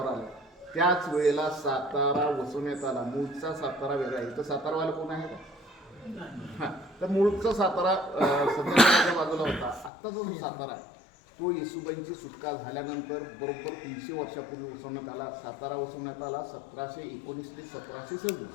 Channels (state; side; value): drops out; right; at 9.9 s